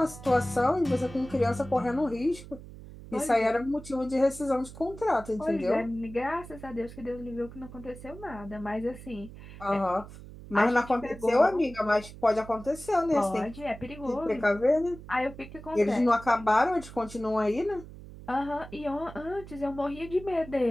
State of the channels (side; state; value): right; noise; hum, 15 dB below the sound